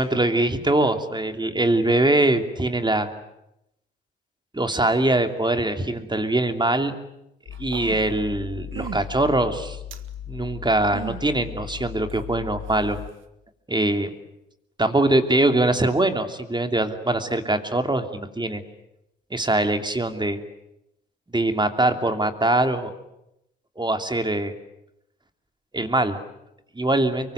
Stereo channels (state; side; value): normal; both; correlation 0.56